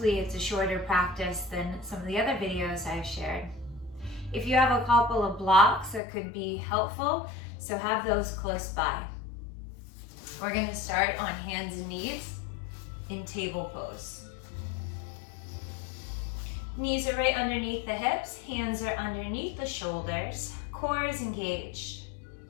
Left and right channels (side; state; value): right; drops out; at 6.0 s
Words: it's a shorter practice than some of the other videos I've shared. If you have a couple of blocks that could be helpful, so have those close by. We're going to start on hands and knees in table pose. Knees are right underneath the hips, hands are underneath the shoulders, core is engaged.